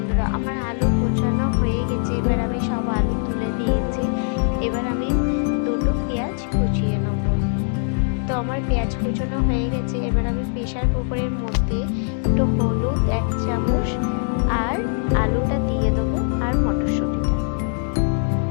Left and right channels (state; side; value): silent; right; 64 dB below the other